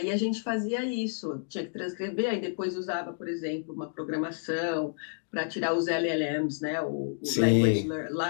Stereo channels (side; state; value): right; silent; digital silence